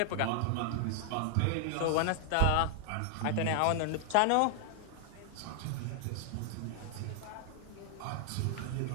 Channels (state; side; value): different; both; correlation 0.00